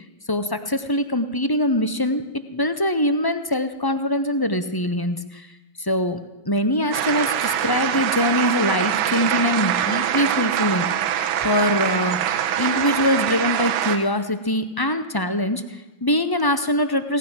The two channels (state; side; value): late; right; 1.1 ms